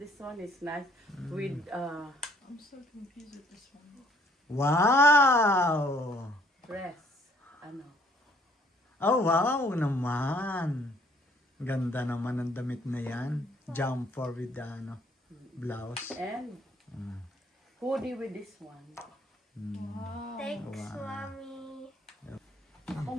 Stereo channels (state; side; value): normal; both; correlation 0.62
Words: one is nice. With, I'm so confused with this one. Wow! dress. Ano? Oh, wow naman. Ganda naman ang damit na yan. Jumper with the ano, blouse. And hoodie with this one. Wow. Thanks, Mommy. Ako